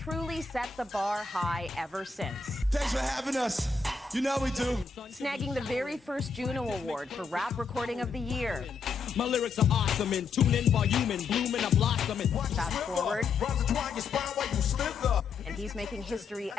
set the bar high ever since. Thanks for having us. You know we do. Snagging the very first Juno Award for Rap Recording of the Year. My lyrics are awesome and tune in volume and bloom and a blossom. Fast forward, and he's making history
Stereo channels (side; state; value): right; quieter; 5.1 dB